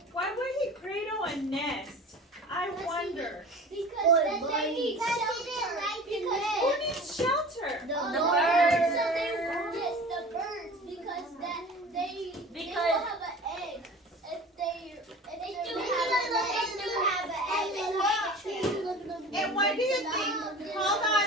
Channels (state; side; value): normal; both; correlation 0.39